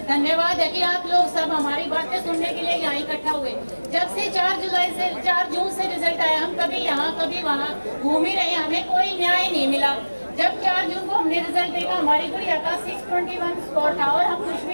धन्यवाद है कि आप लोग सब हमारी बातें सुनने के लिए यहाँ इकट्ठा हुए। जब से 4 जून से रिजल्ट आया, हम कभी यहाँ कभी वहाँ घूम ही रहे, हमें कोई न्याय नहीं मिला। जब 4 जून को हमने रिजल्ट देखा, हमारी गुड़िया का 621 स्कोर था और हम खुश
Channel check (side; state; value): both; inverted; correlation -1.00